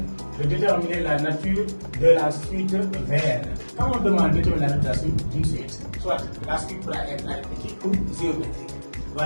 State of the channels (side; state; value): both; inverted; correlation -1.00